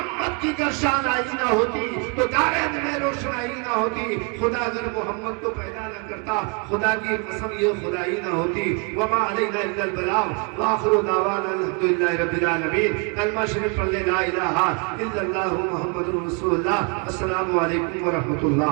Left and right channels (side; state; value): left; quieter; 32.7 dB